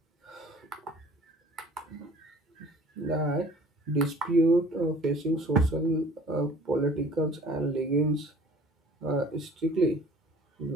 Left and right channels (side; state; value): both; normal; correlation 0.50